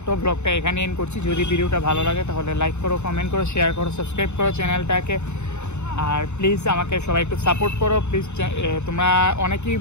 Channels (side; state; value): right; late; 0.82 ms